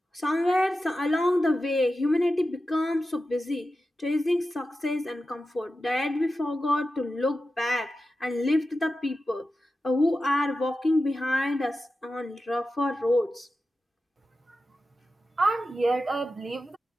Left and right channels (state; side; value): normal; both; correlation 0.92